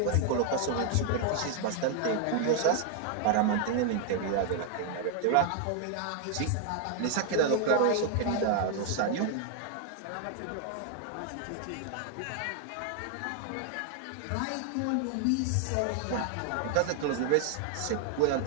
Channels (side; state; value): both; different; correlation 0.00